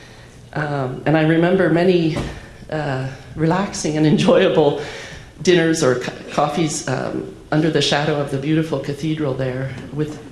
And I remember many relaxing and enjoyable dinners or coffees under the shadow of the beautiful cathedral there with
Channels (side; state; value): both; identical; correlation 1.00